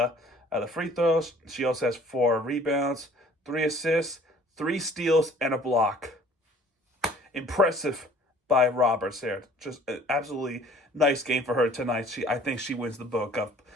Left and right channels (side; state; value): both; normal; correlation 0.53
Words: free throws. She also has 4 rebounds, 3 assists, 3 steals, and a block. Impressive by Roberts there. Just an absolutely nice game for her tonight. I think she wins the book